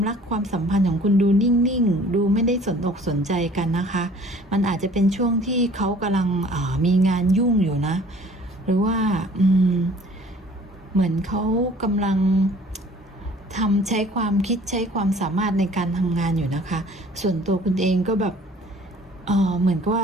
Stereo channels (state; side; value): normal; both; correlation 0.52